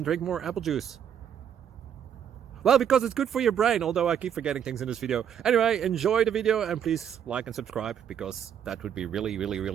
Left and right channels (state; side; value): quieter; left; 8.8 dB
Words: drink more apple juice? Well, because it's good for your brain, although I keep forgetting things in this video. Anyway, enjoy the video and please like and subscribe, because that would be